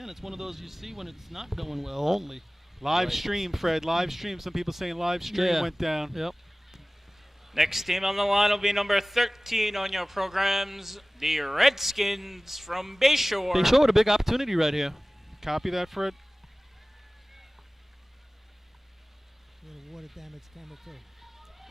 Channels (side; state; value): both; normal; correlation 0.98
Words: it's one of those you see when it's not going well only. Live Right. stream, Fred. Live stream. Some people saying live stream went down. Yep. Next team on the line will be number 13 on your programs, the Redskins from Bayshore. They showed a big opportunity right here. Copy that, Fred. Little water damage camera